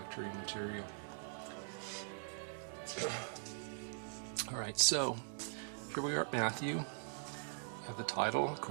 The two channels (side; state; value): left; silent; digital silence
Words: material. Alright, so here we are at Matthew. You have the title,